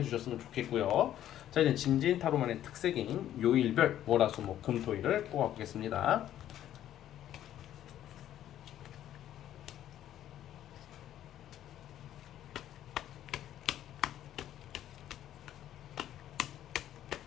좋겠고요. 자, 이제 진진 타로만의 특색인 요일별 월화수목 금토일을 뽑아보겠습니다.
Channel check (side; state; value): right; quieter; 11.8 dB